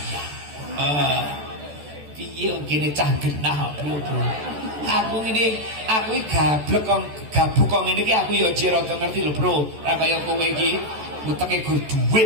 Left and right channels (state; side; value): late; left; 14 ms